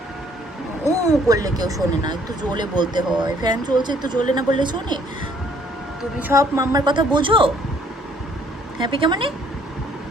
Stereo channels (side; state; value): both; normal; correlation 0.62